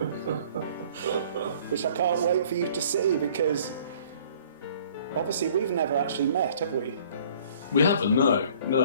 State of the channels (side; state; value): both; inverted; correlation -0.55